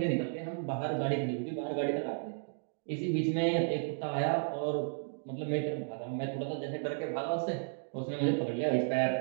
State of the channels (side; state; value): left; silent; digital silence